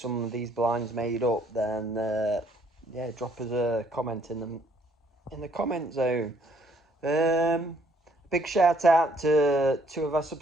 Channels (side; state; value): both; normal; correlation 0.65